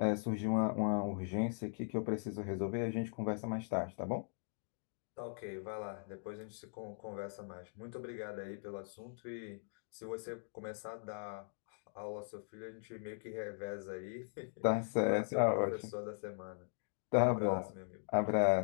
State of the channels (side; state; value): right; silent; digital silence